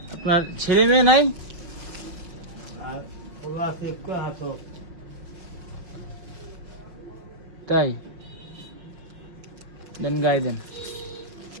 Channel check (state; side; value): late; left; 5.3 ms